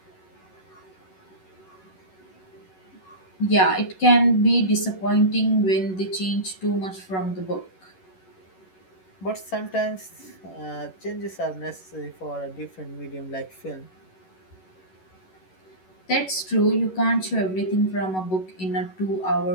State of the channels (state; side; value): late; right; 11 ms